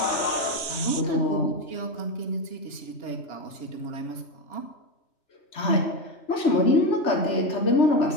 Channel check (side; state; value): right; late; 2.9 ms